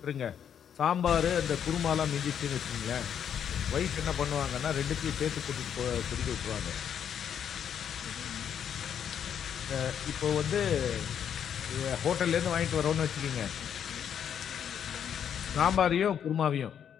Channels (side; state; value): right; quieter; 8.6 dB